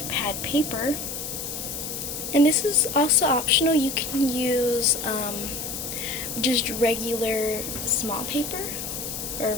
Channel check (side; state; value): left; noise; hiss, 6 dB below the sound